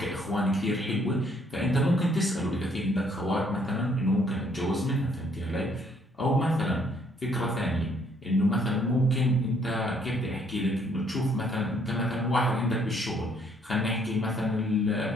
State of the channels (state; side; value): normal; both; correlation 0.66